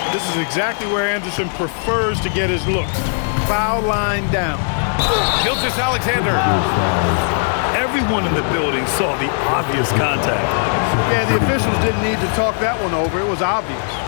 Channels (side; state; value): right; silent; digital silence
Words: This is exactly where Anderson prefers to get his looks. Foul line down. Gilgeous-Alexander. Everyone in the building saw the obvious contact. Yeah, the officials didn't need to talk that one over. It was obvious.